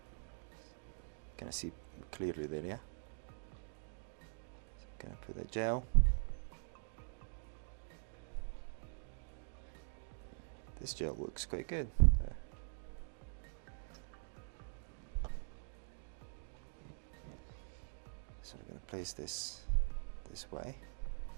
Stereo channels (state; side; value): silent; left; digital silence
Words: Can I see clearly there? Yeah. So I'm going to put the gel. This gel looks quite good. So we're going to place this way.